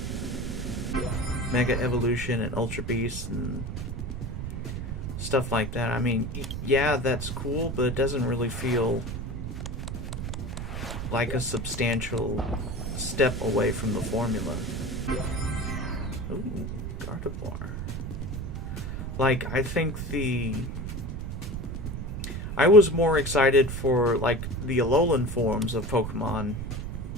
Mega Evolution and Ultra Beast and stuff like that. I mean, yeah, that's cool, but it doesn't really feel like a substantial step away from the formula. Ooh, Gardevoir. Like, I think I was more excited for, like, the Alolan forms of Pokemon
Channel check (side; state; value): right; noise; rumble, 5 dB below the sound